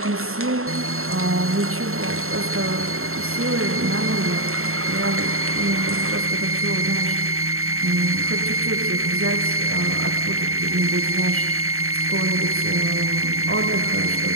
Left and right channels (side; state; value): left; late; 0.62 ms